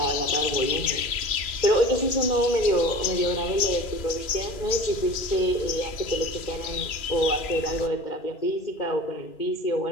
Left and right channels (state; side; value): late; right; 2.4 ms